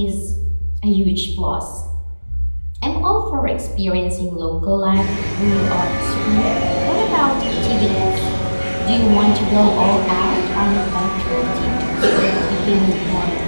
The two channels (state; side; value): inverted; both; correlation -1.00